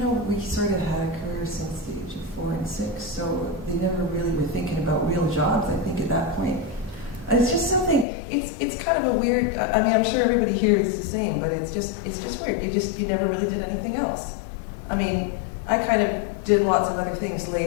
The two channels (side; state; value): right; drops out; at 8.1 s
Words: we sort of had a career since the age of 4 and 6, so they never really were thinking about real jobs, I think, at that point. And it's just something, it's kind of a weird, I mean, I'm sure everybody here is the same, but it's just weird. You never really did anything else. I mean, I kind of did lots of other things